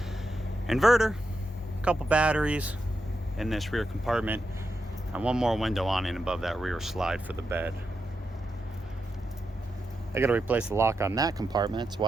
Inverter, a couple batteries in this rear compartment, and one more window awning above that rear slide for the bed. I got to replace the lock on that compartment. That's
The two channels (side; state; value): both; normal; correlation 0.86